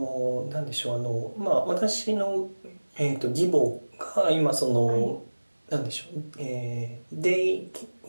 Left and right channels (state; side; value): inverted; both; correlation -1.00